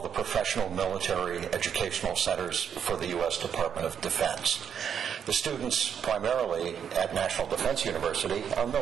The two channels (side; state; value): left; quieter; 8.0 dB